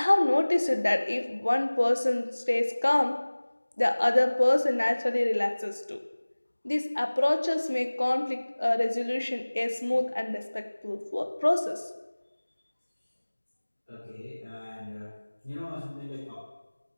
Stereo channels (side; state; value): both; inverted; correlation -1.00